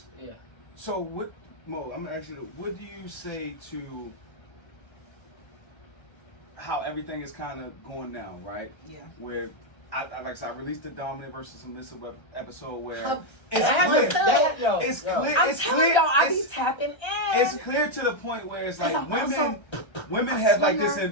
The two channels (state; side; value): late; right; 1.3 ms